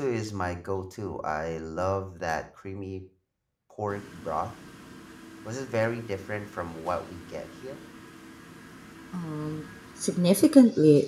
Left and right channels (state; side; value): identical; both; correlation 1.00